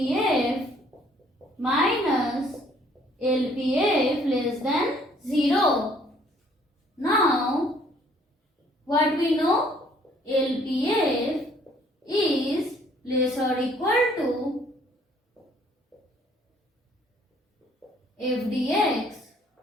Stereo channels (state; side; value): normal; both; correlation 0.61